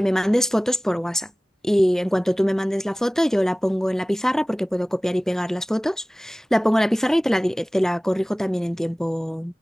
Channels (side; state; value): both; normal; correlation 0.98